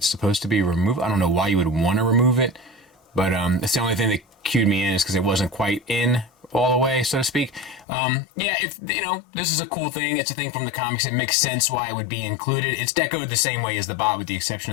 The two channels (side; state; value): right; drops out; at 7.9 s